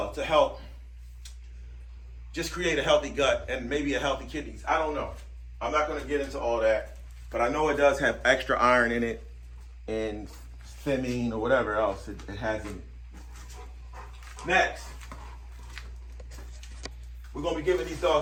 to help just create a healthy gut and maybe a healthy kidneys. I don't know. I'm not going to get into all that, but I know it does have extra iron in it and thiamine or whatever else it has in it. Next, we're going to be giving these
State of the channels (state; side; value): identical; both; correlation 1.00